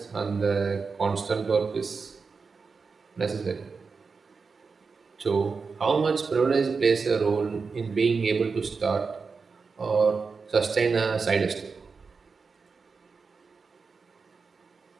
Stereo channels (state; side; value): quieter; left; 4.9 dB